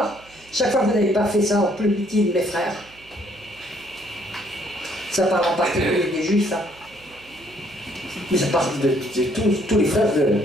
Chaque fois que vous n'avez pas fait ça en plus petit de mes frères. Ça parle en particulier des Juifs, hein. Mais ça parle de tous les frères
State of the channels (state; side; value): noise; right; hum, 26 dB below the sound